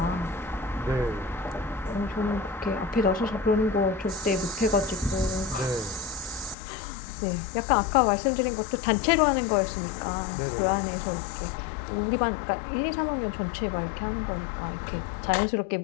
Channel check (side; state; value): right; drops out; at 6.6 s